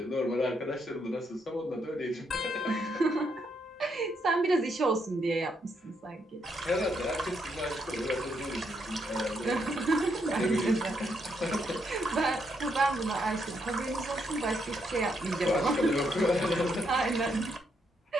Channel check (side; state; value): both; normal; correlation 0.77